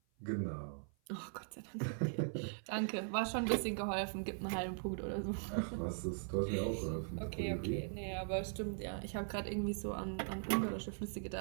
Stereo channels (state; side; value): silent; left; 51 dB below the other